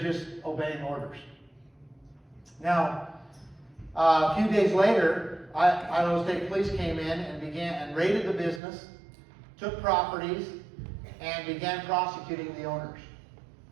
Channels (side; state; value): left; drops out; at 8.6 s